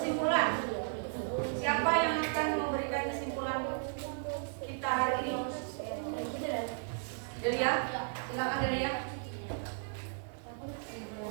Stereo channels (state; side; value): silent; left; digital silence